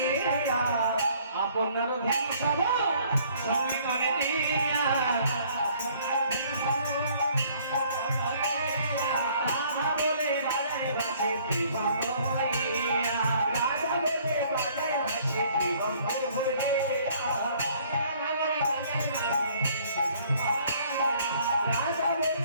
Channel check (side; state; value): both; inverted; correlation -0.59